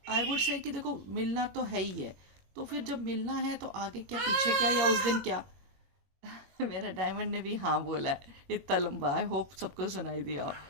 आई वुड से कि देखो मिलना तो है ही है, तो फिर जब मिलना है तो आगे क्या पीछे क्या या उस दिन क्या। मेरा डायमंड ने भी हाँ बोला है, इतना लंबा, आई होप सबको सुनाई दिया हो।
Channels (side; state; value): left; late; 21 ms